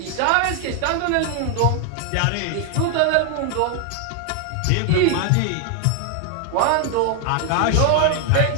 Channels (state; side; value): different; both; correlation 0.00